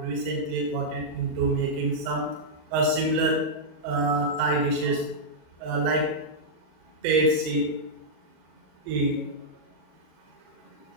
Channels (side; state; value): left; late; 39 ms